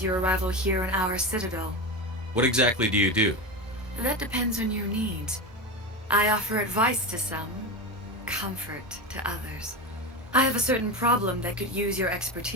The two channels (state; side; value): normal; both; correlation 0.20